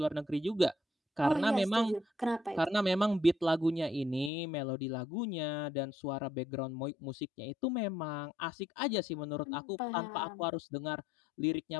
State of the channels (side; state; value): right; drops out; at 4.3 s